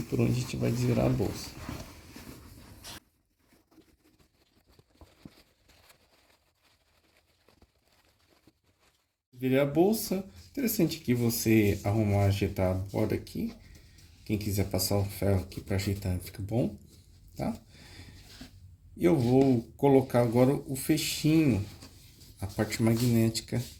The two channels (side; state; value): both; identical; correlation 1.00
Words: por onde a gente vai desvirar a bolsa. Virei a bolsa. Interessante que você arrumar, ajeitar a borda aqui. Quem quiser passar o ferro aqui para ajeitar, fica bom, tá? E eu vou colocar agora o fechinho, a parte magnética